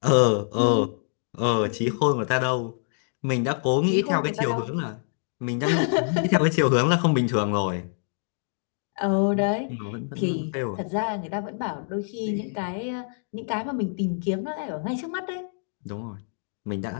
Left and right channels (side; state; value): right; silent; digital silence